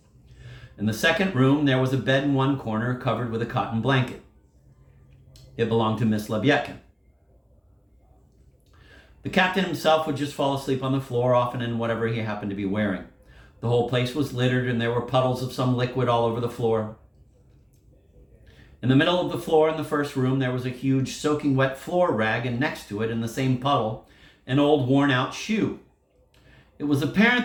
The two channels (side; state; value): both; identical; correlation 1.00